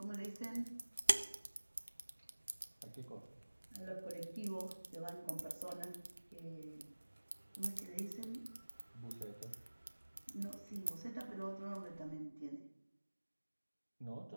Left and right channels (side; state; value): both; inverted; correlation -1.00